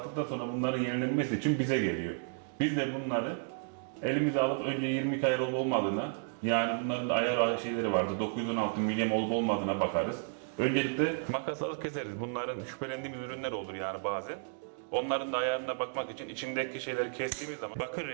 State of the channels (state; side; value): silent; left; digital silence